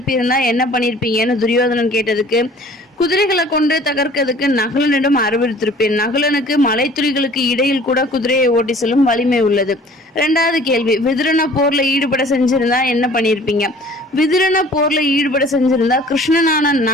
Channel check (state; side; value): normal; both; correlation 0.50